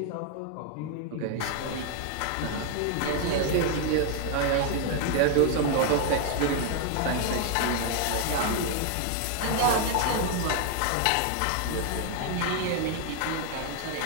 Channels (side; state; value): both; different; correlation 0.00